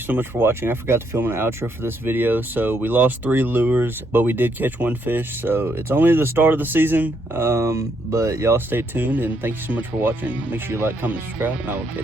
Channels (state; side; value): normal; both; correlation 0.74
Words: so much for watching. I forgot to film an outro for this video. So we lost 3 lures, but we did catch 1 fish. So it's only the start of the season, but y'all stay tuned, and thank you so much for watching. Make sure you like, comment, subscribe, and I will